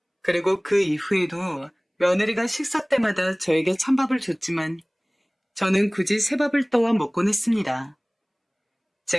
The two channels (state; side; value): identical; both; correlation 1.00